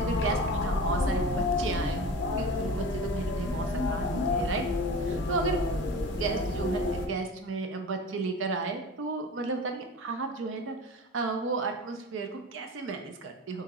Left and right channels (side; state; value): both; normal; correlation 0.34